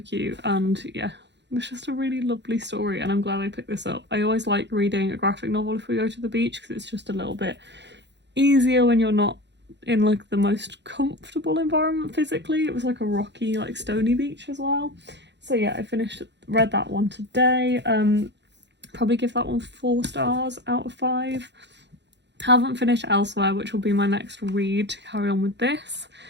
and yeah, it was just a really lovely story, and I'm glad I picked this up. I always like reading a graphic novel if we go to the beach, because it's just a little bit easier when you're not in like the most comfortable environment physically. It was like a rocky, like stony beach as well. So yeah, I read that one today. Probably give that one 4 stars out of 5. Haven't finished Elsewhere, which will be my next read to carry on with this,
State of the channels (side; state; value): left; late; 0.51 ms